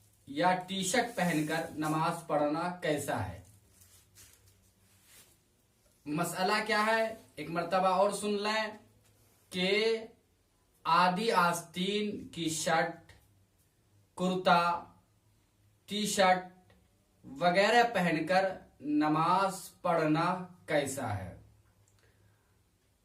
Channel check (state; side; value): identical; both; correlation 1.00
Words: या टी शर्ट पहनकर नमाज पढ़ना कैसा है। मसला क्या है एक मर्तबा और सुन लें कि आदि आस्तीन की शर्ट, कुर्ता, टी शर्ट वगैरह पहनकर नमाज पढ़ना कैसा है।